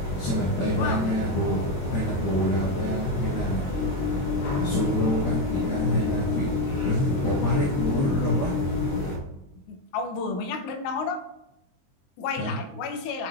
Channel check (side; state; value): right; late; 22 ms